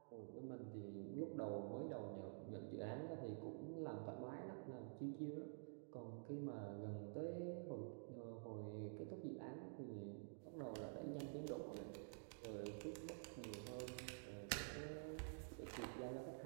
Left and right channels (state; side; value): silent; left; digital silence